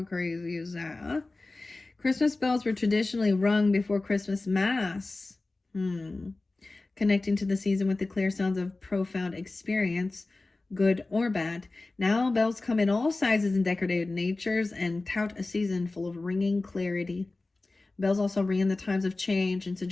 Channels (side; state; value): right; quieter; 3.2 dB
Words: crazy is that, huh? Christmas bells were traditionally rung before Christmas Mass. Connecting to the season with the clear sounds of profound experience, good or bad. Now bells come in all sizes and decorated natures and tout a season full of ringing clarity. Bells also ring in the times of change and